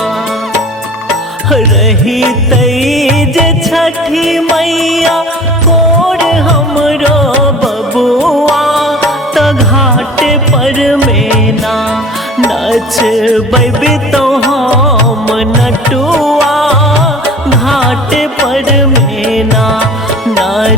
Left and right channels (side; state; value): both; normal; correlation 0.43